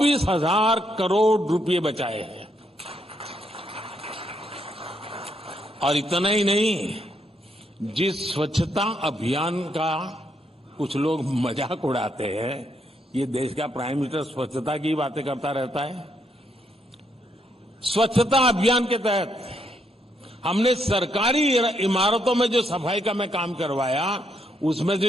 करोड़ रुपए बचाए हैं। और इतना ही नहीं, जिस स्वच्छता अभियान का कुछ लोग मजाक उड़ाते हैं, ये देश का प्राइम मिनिस्टर स्वच्छता की बातें करता रहता है। स्वच्छता अभियान के तहत हमने सरकारी इमारतों में जो सफाई का मैं काम करवाया, उसमें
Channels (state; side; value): normal; both; correlation 0.75